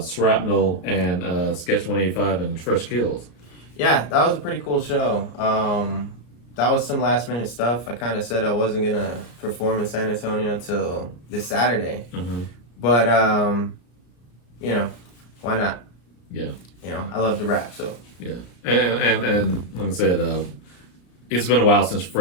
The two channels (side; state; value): right; late; 34 ms